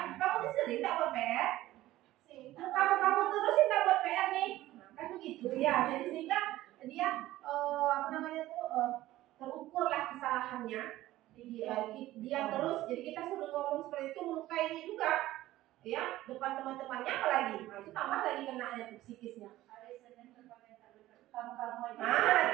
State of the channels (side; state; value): left; quieter; 15.7 dB